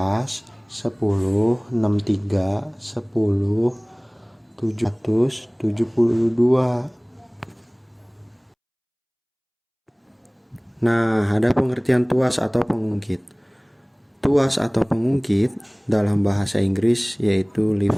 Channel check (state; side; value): identical; both; correlation 1.00